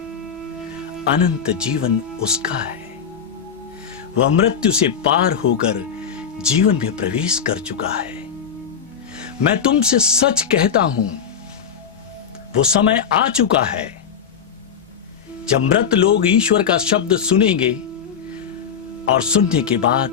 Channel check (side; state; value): right; quieter; 7.3 dB